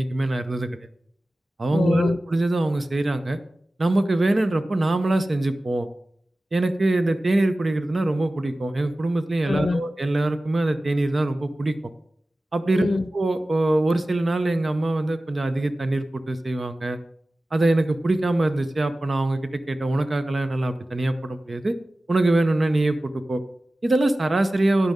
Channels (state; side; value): normal; both; correlation 0.96